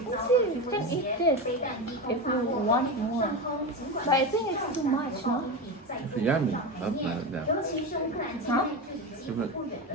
You can eat this if you want more. But I think it's too much, no? It's yummy, not that. Huh?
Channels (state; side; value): normal; both; correlation 0.20